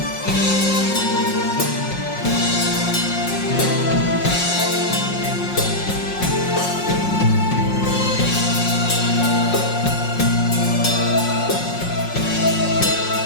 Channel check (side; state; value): right; late; 5.5 ms